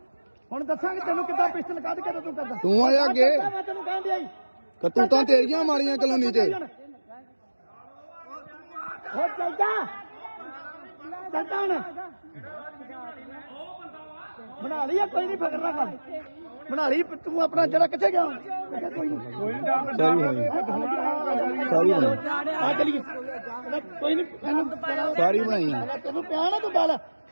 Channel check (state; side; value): inverted; both; correlation -1.00